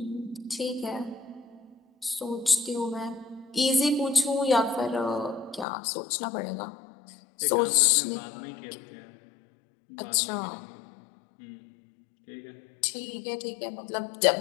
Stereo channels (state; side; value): drops out; right; at 5.7 s